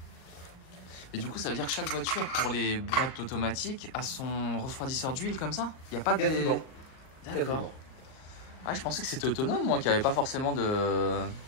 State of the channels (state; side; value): late; right; 38 ms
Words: Et du coup, ça veut dire que chaque voiture, pour les boîtes automatiques, a son refroidisseur d'huile comme ça? Il n'y a pas de... D'accord. Ah, je pensais que c'était autonome, moi, qu'il n'y avait pas forcément de